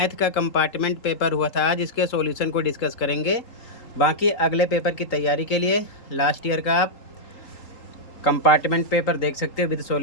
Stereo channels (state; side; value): late; right; 3.8 ms